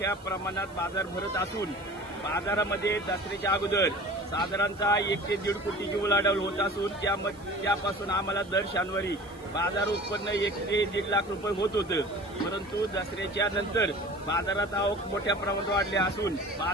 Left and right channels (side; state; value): right; noise; hiss, 26 dB below the sound